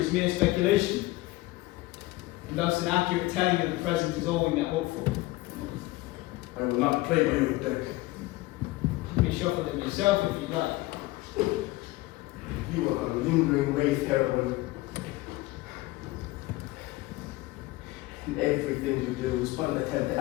mere speculation, and thus an accurate telling of the present is all we may hope for. I will not play by your deck. You may shuffle them yourself if you like. You are on a lingering wraith, Herelwin. And everything you do is but an attempt to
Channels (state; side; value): quieter; right; 19.6 dB